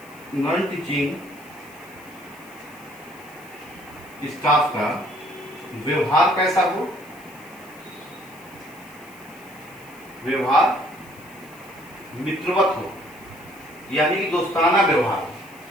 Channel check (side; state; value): left; noise; hiss, 23 dB below the sound